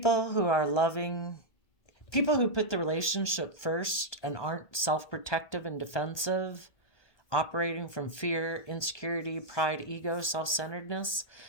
who are loving, People who put the relationship first and aren't self-protective and defensive, operating from fear, insecurity, pride, ego, self-centeredness,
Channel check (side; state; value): right; late; 1.3 ms